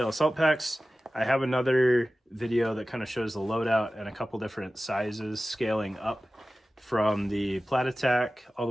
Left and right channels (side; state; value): both; normal; correlation 0.96